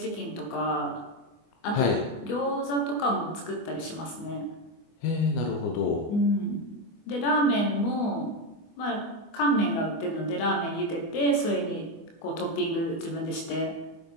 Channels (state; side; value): late; right; 24 ms